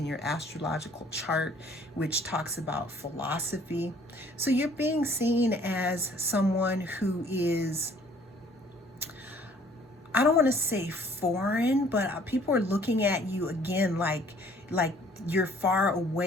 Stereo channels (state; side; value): normal; both; correlation 0.57